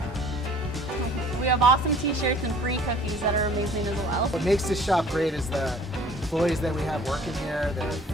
We have awesome t-shirts and free cookies that are amazing as well. What makes this shop great is the employees that we have working here. They're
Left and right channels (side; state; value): both; normal; correlation 0.51